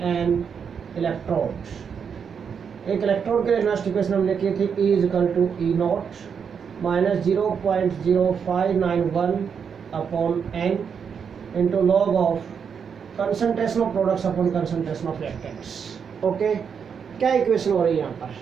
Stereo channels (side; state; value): left; quieter; 6.8 dB